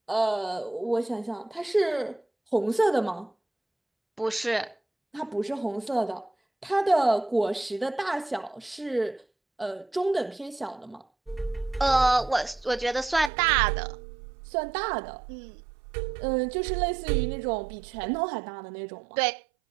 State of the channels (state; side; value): drops out; left; at 13.3 s